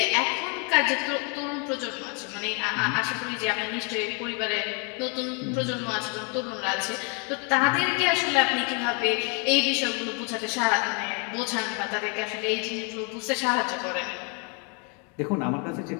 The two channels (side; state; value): right; quieter; 33.0 dB